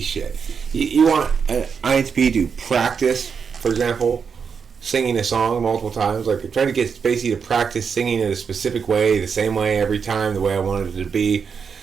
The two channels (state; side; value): quieter; left; 6.2 dB